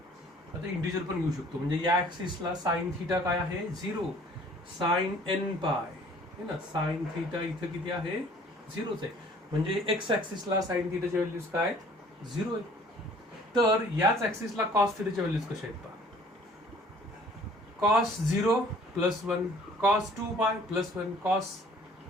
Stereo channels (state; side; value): normal; both; correlation 0.54